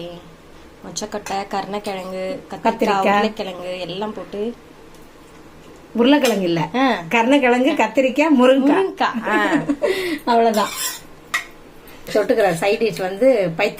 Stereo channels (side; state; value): both; identical; correlation 1.00